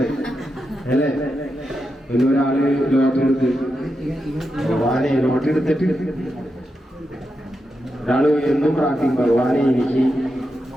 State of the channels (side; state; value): both; normal; correlation 0.87